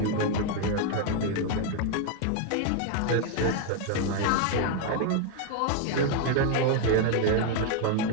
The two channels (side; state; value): both; different; correlation 0.01